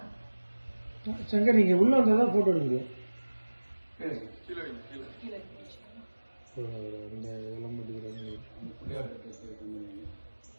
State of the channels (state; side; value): inverted; both; correlation -1.00